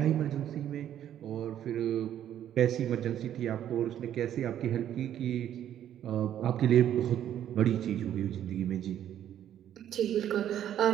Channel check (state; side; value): quieter; left; 10.8 dB